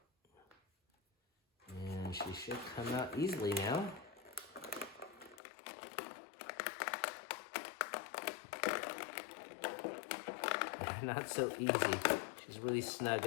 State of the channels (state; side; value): drops out; right; at 5.4 s